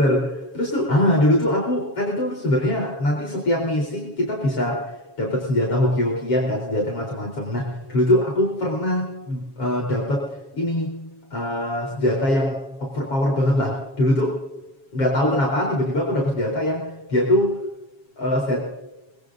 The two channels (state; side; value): late; right; 7.3 ms